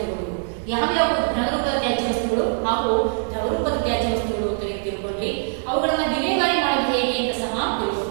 ಯಾವ್ಯಾವ ಘನರೂಪದ ತ್ಯಾಜ್ಯ ವಸ್ತುಗಳು ಹಾಗೂ ದ್ರವರೂಪದ ತ್ಯಾಜ್ಯ ವಸ್ತುಗಳು ಅಂತ ತಿಳ್ಕೊಂಡ್ರಿ. ಅವುಗಳನ್ನ ವಿಲೇವಾರಿ ಮಾಡೋದು ಹೇಗೆ ಅಂತ ಸಹ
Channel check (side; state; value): left; silent; 64 dB below the other